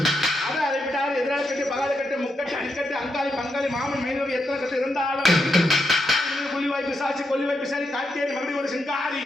அதை அதை விட்டால் எதிராளி கட்டு பகாத கட்டு முக்கட்டு அடிக்கட்டு அங்காளி பங்காளி மாமன் மைனவி எத்தனை கட்டு இருந்தாலும் கொல்லிவாய் பிசாச்சி கொல்லிவாய் பிசாச்சி காட்டேரி மறுபடியும் ஒரு சிங்காரி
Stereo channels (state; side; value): normal; both; correlation 0.82